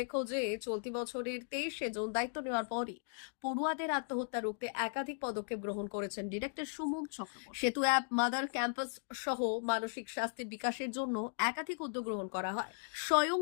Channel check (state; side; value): silent; right; digital silence